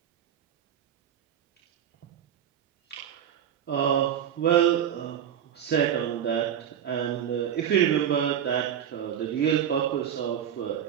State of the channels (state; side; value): quieter; left; 9.5 dB